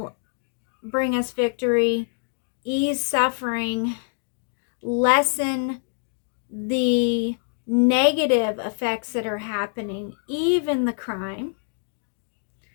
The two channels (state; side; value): silent; right; digital silence